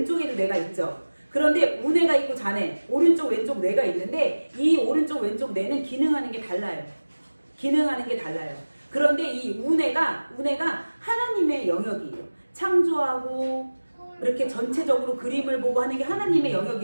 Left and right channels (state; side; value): inverted; both; correlation -1.00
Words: 뇌가 있죠. 그런데 우뇌가 있고 좌뇌, 오른쪽 왼쪽 뇌가 있는데 이 오른쪽 왼쪽 뇌는 기능하는 게 달라요. 기능하는 게 달라요. 그런데 이 우뇌가 하나님의 영역이에요. 창조하고 이렇게 전체적으로 그림을 보고 하는 게 하나님의